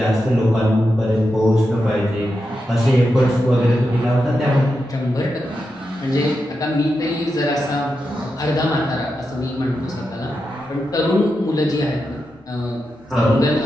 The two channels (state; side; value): normal; both; correlation 0.88